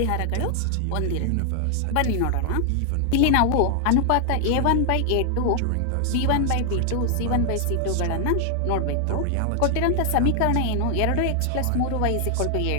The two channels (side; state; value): both; different; correlation 0.00